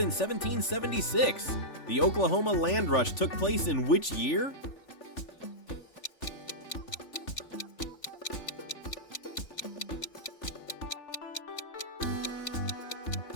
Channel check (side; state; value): right; late; 3.4 ms